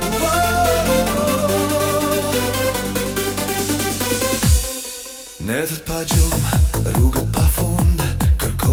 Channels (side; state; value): both; identical; correlation 1.00